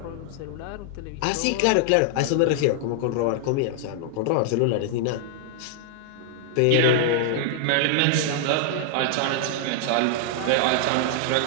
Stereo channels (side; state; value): both; different; correlation -0.01